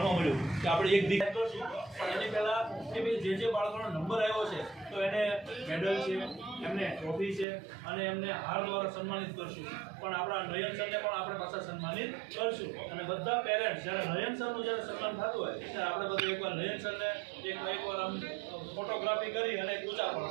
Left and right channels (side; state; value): left; drops out; at 7.5 s